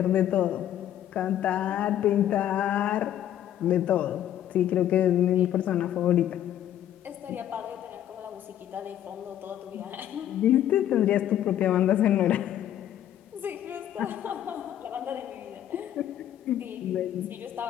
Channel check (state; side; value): quieter; right; 11.3 dB